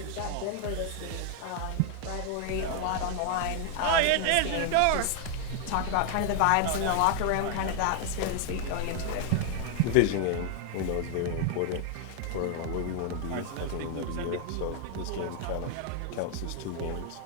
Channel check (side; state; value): both; different; correlation 0.00